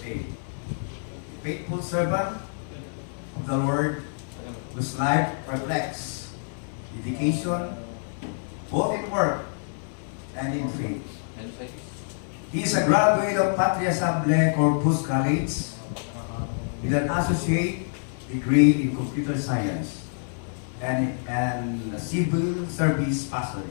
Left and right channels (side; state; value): right; silent; digital silence